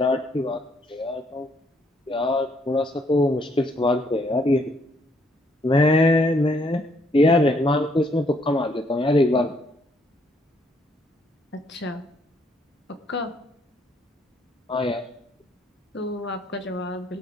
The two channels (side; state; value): both; normal; correlation 0.69